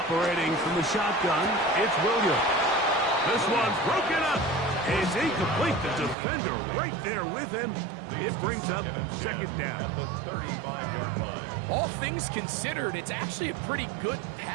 from the shotgun, it's Williams. This one's broken up. It's incomplete. The defender right there with him. It brings up 2nd down. At the 35-yard line. All things considered, it's actually a pretty good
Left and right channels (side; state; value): left; drops out; at 6.2 s